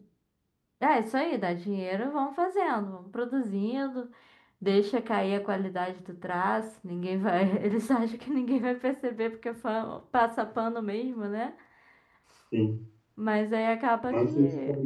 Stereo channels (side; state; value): both; identical; correlation 1.00